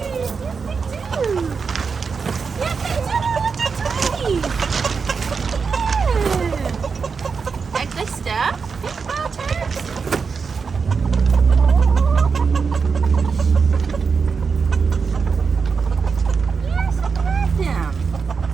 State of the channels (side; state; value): left; quieter; 5.4 dB